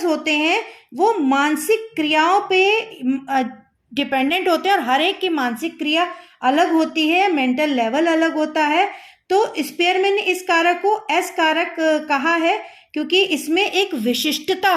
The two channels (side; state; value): both; identical; correlation 1.00